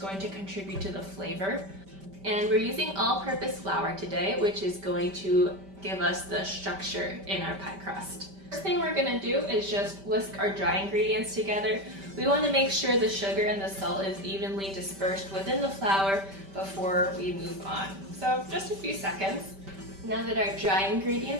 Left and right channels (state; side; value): late; left; 5.1 ms